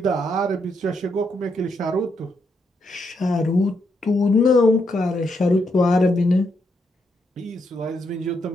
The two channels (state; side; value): normal; both; correlation 0.79